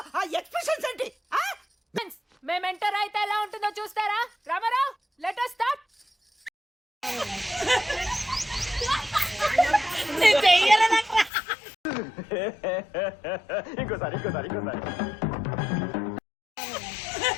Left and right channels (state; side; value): drops out; right; at 11.3 s